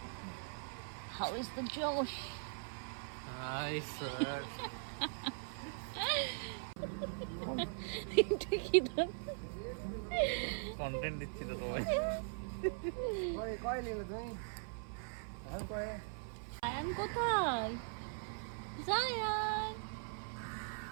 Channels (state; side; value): silent; left; 51 dB below the other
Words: How is the Josh? Hi, sir. এটা কি দাম? কন্টেন্ট দিচ্ছি তো তোমায়। কয় নিলে তুমি? এখন কয়? জায়ান কোথায়? জায়ান